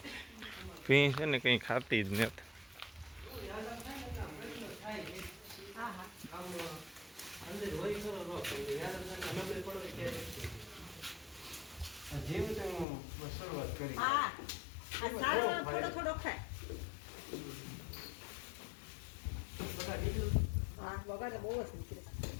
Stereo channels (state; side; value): drops out; right; at 12.9 s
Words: ભીં છે ને કંઈ ખાતી જ નથી. શરૂઆત કરી થોડો થોડો ખાય બગાડ બહુ જ નીકળે.